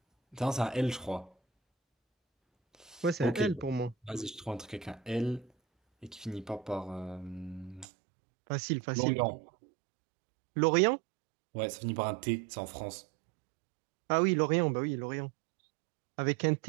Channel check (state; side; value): drops out; left; at 7.9 s